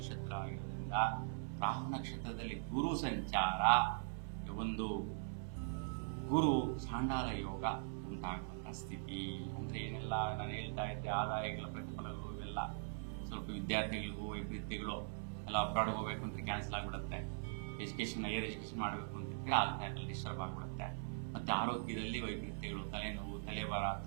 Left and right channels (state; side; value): silent; left; 50 dB below the other